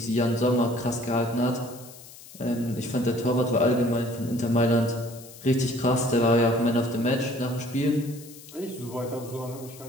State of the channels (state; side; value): noise; left; hiss, 19 dB below the sound